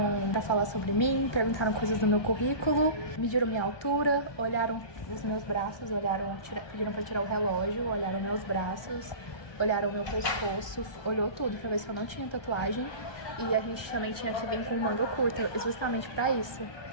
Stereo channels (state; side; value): late; right; 1.2 ms